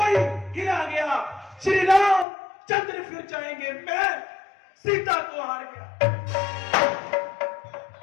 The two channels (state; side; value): drops out; right; at 2.2 s